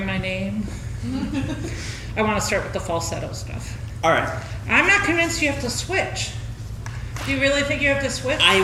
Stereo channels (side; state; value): both; identical; correlation 1.00